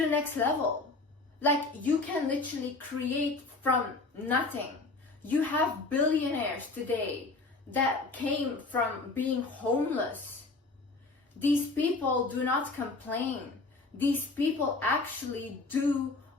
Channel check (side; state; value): right; quieter; 3.5 dB